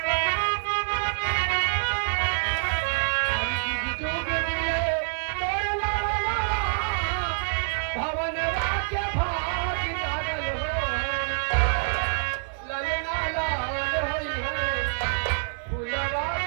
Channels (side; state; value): left; silent; digital silence